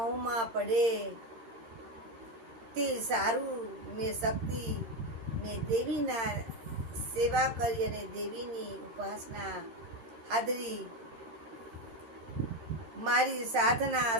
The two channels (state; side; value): late; left; 13 ms